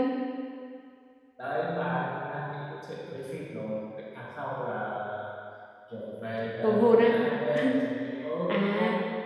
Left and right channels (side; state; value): both; identical; correlation 1.00